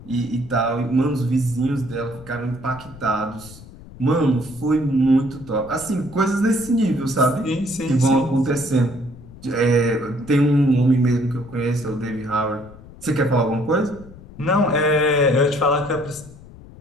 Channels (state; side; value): noise; left; rumble, 19 dB below the sound